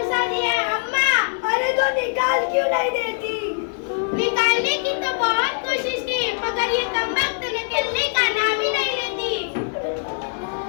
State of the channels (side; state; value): right; silent; digital silence